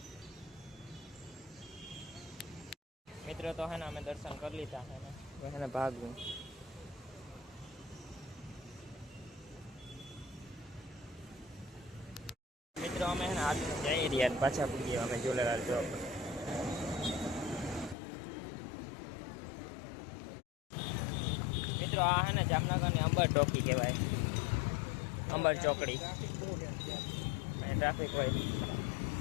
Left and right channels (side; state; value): right; drops out; at 17.9 s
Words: મિત્રો, તો હે ને અમે દર્શન કરી લીધા હે ને ભાગવું. મિત્રો, અમે હે ને હાથ જઈ રહ્યા પાછા પૂગીએ અમે ઝુલેલાલ ચોક. મિત્રો, આ હે ને જામનગરની અંબર ચોકી કહેવાય, અંબર ચોકડી. અને ટ્રાફિક હોય.